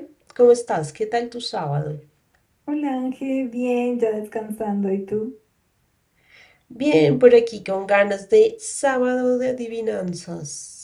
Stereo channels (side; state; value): both; identical; correlation 1.00